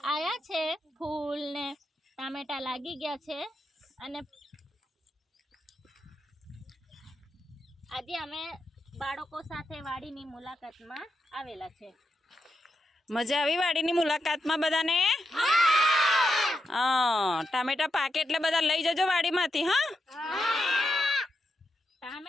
આયા છે ફૂલ ને ટામેટા લાગી ગયા છે। અને આજે અમે બાળકો સાથે વાડીની મુલાકાતમાં આવેલા છે। મજા આવી વાડીની મુલાકાતમાં બધાને? ટામેટા પાકે એટલે બધા લઈ જજો વાડીમાંથી।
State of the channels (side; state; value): both; normal; correlation 0.85